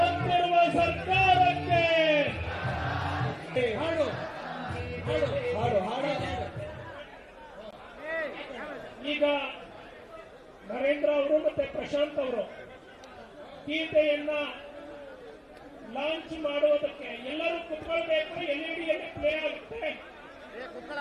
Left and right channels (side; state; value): both; identical; correlation 1.00